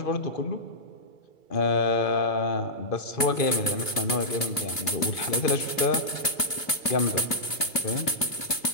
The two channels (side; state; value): right; late; 2.6 ms